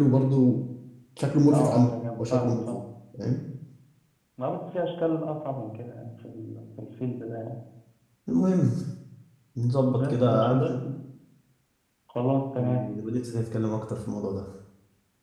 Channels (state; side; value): identical; both; correlation 1.00